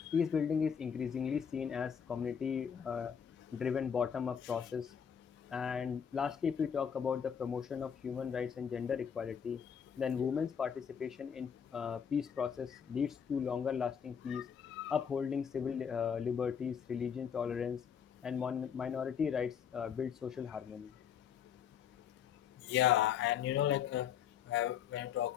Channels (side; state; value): right; quieter; 7.6 dB